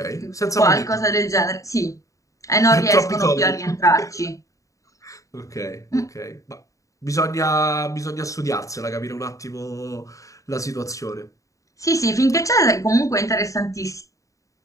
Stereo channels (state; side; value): late; right; 0.16 ms